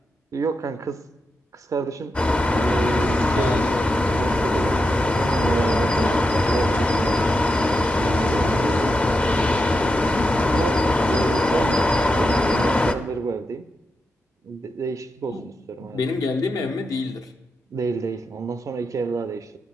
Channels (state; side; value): normal; both; correlation 0.87